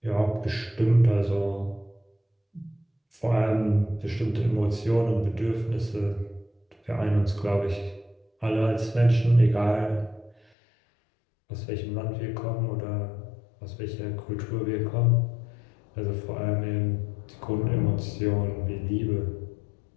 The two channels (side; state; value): right; drops out; at 10.4 s